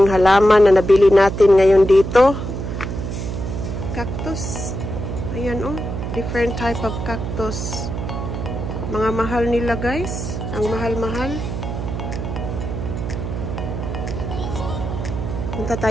halaman na nabili natin ngayon dito. Cactus. Ayan different type of cactus. Mga mahal nila guys. Ang mahal-mahal. Punta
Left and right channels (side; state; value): right; noise; hum, 5 dB below the sound